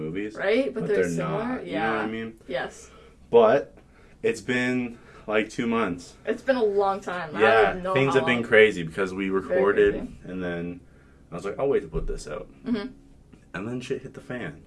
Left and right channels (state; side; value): identical; both; correlation 1.00